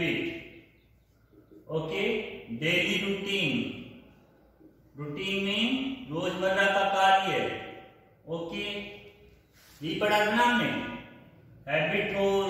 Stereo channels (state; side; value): identical; both; correlation 1.00